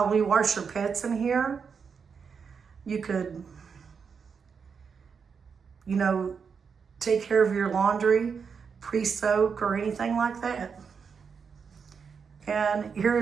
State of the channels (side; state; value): left; quieter; 6.1 dB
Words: wash your pets in here. You could, you know, take care of your laundry, pre-soak or anything like that. And